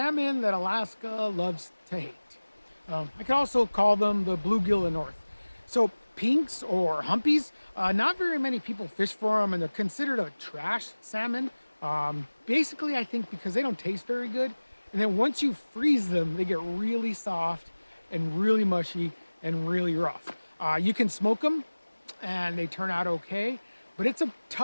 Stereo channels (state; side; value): inverted; both; correlation -1.00